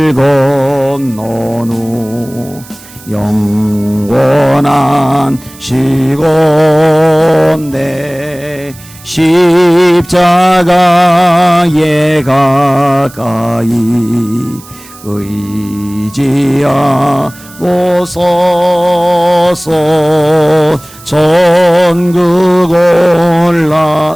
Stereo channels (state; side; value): noise; right; hiss, 21 dB below the sound